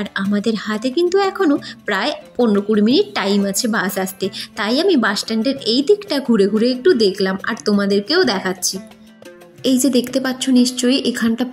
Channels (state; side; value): identical; both; correlation 1.00